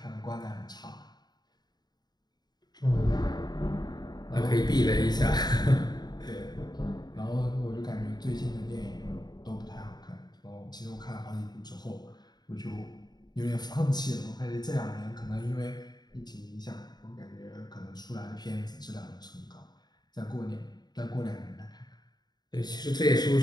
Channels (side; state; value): right; late; 0.20 ms